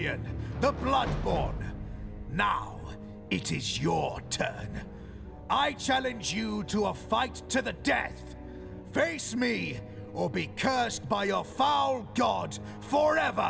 the Bloodborne. Now, it is your turn. I challenge you to a fight to the death. Face me, or be cursed by your foul god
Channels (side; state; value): both; identical; correlation 1.00